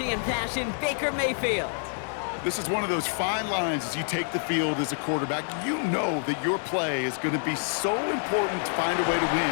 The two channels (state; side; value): silent; right; 57 dB below the other